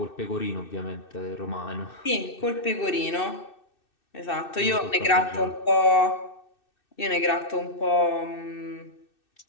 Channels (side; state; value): right; late; 2.6 ms